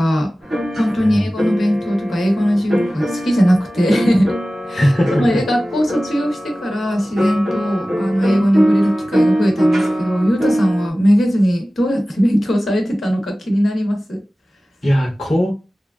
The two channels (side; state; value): both; normal; correlation 0.96